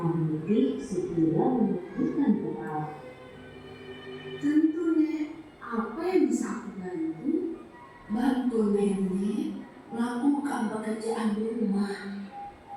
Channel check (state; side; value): identical; both; correlation 1.00